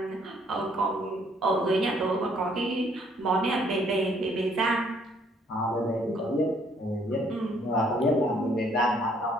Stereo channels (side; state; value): both; normal; correlation 0.64